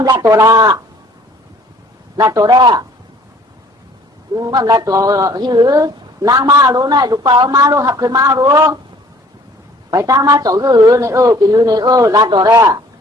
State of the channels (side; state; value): both; normal; correlation 0.55